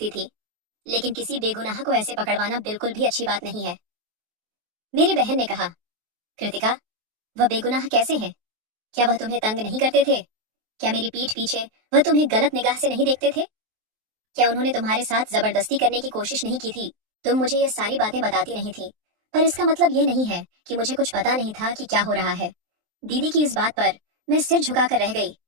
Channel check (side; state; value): left; late; 23 ms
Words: थी, लेकिन किसी बेगुनाह को ऐसे पकड़वाना बिल्कुल भी अच्छी बात नहीं है। मेरी बहन ने कहा, कृतिका, वह बेगुनाह कैसे हैं? क्या वह तुम्हें तंग नहीं करते थे? क्या मेरी पीठ पीछे वह तुम्हें गलत निगाह से नहीं देखते थे? क्या उन्होंने तुम्हारे साथ जबरदस्ती करने की कोशिश नहीं की थी? तुम मुझे ये सारी बातें बताती नहीं थी, पर इसका मतलब ये नहीं है कि मुझे कुछ पता नहीं था कि क्या हो रहा है। दीदी की इस बात पर मैं सिर झुकाकर रह गई